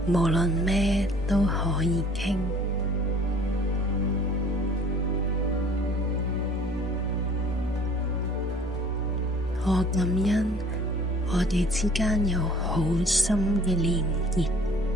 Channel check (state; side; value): normal; both; correlation 0.53